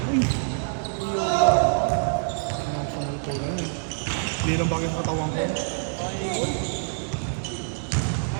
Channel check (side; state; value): left; silent; digital silence